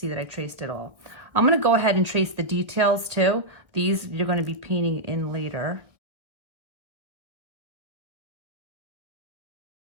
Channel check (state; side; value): late; left; 1.4 ms